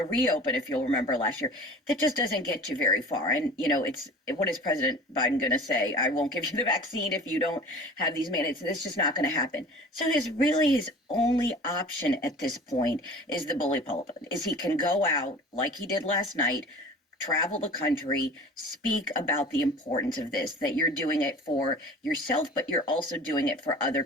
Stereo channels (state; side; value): normal; both; correlation 0.41